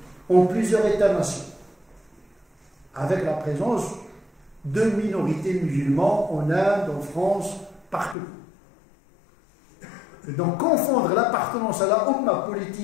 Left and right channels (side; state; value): right; drops out; at 8.2 s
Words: en plusieurs États-nations, avec la présence de minorités musulmanes en Inde, en France, partout. Et donc confondre l'appartenance à la Ummah